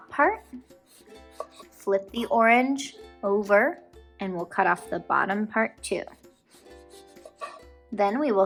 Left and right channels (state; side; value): identical; both; correlation 1.00